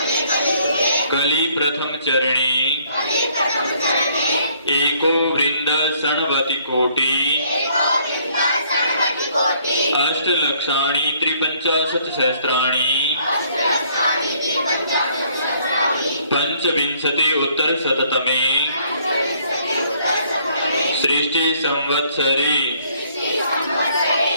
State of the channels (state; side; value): inverted; both; correlation -0.63